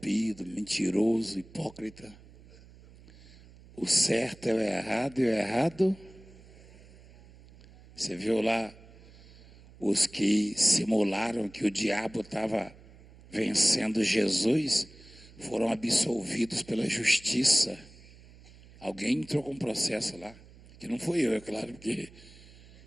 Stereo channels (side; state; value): right; noise; hum, 22 dB below the sound